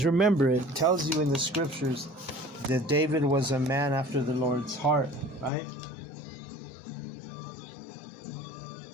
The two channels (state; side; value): drops out; right; at 5.5 s